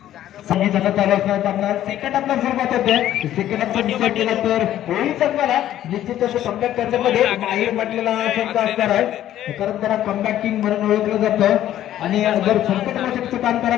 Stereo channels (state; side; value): quieter; right; 12.3 dB